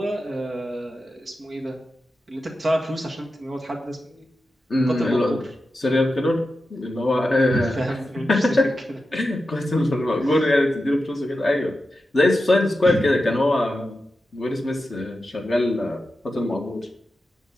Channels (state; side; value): normal; both; correlation 0.91